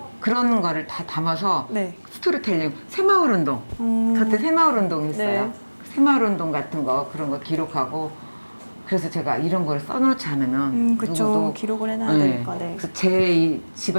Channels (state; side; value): inverted; both; correlation -1.00